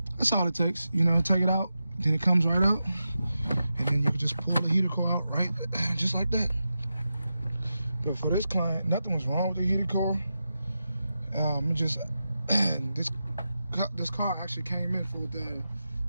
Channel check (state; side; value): inverted; both; correlation -0.90